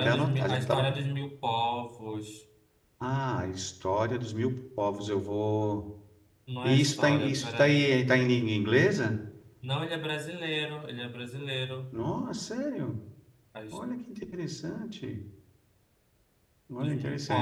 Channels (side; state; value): both; identical; correlation 1.00